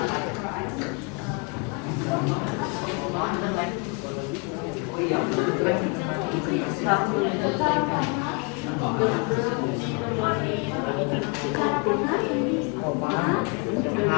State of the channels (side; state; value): right; quieter; 33.6 dB